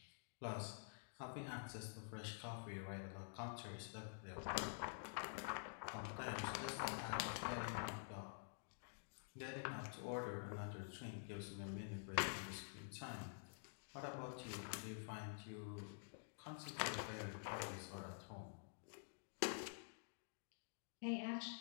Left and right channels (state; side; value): silent; right; digital silence